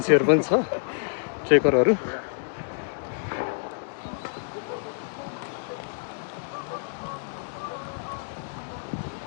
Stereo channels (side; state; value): right; silent; digital silence